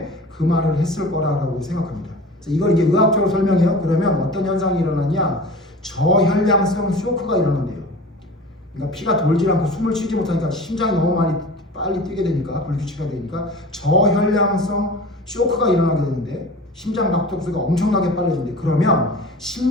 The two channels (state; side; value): normal; both; correlation 0.38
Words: 그 말을 했을 거라고 생각합니다. 그래서 이걸 이제 의학적으로 설명해요. 그러면 어떤 현상이 일어나냐? 저혈량성 쇼크가 일어난대요. 그러니까 피가 돌지 않고 숨을 쉬지 못하니까 심장이 너무 빨리 뛰게 되니까 불규칙하게 되니까 저혈량성 쇼크가 일어나게 되는데 심장 박동수가 엄청나게 빨라진대. 그러면